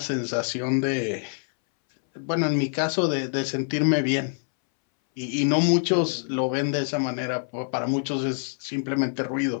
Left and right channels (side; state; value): right; silent; 61 dB below the other